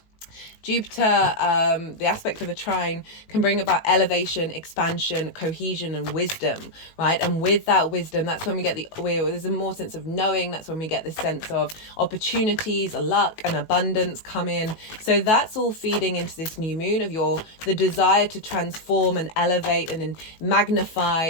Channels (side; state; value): right; late; 18 ms